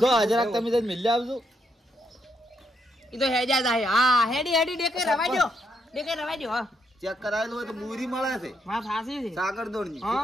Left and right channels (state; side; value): normal; both; correlation 0.77